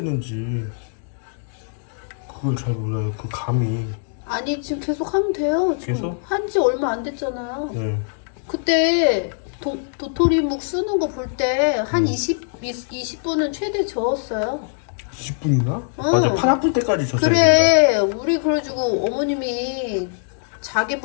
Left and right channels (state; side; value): silent; right; digital silence